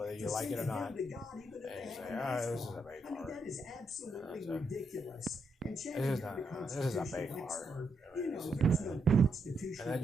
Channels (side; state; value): both; normal; correlation 0.79